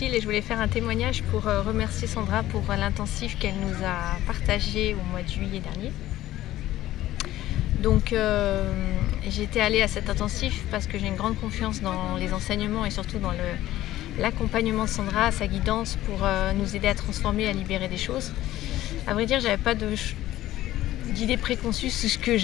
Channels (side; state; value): right; quieter; 14.7 dB